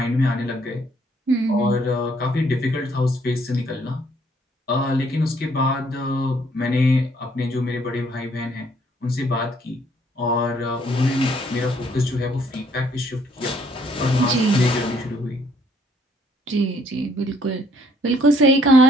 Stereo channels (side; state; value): both; normal; correlation 0.65